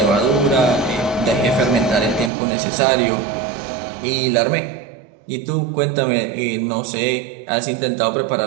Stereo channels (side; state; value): left; drops out; at 2.3 s